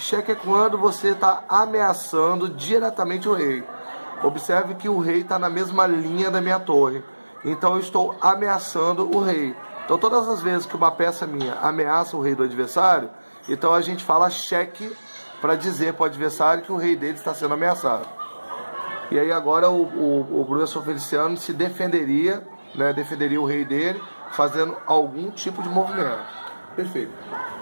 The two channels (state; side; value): inverted; both; correlation -1.00